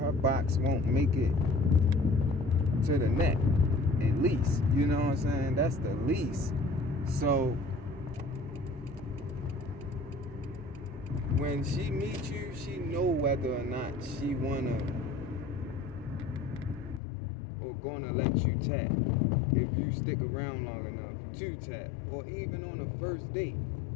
box won't make it to the net, at least. You know what I'm saying? That's the least. So when she meets you, she know whether or not she wanna or gonna let you tap, if you stick around long enough to tap, or even on a first date.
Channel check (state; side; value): drops out; right; at 17.0 s